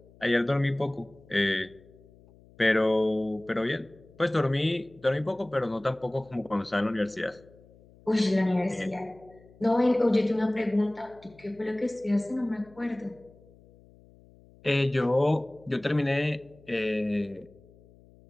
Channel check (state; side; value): noise; left; hum, 26 dB below the sound